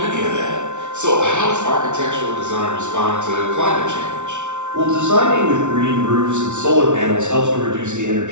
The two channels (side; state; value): left; late; 0.84 ms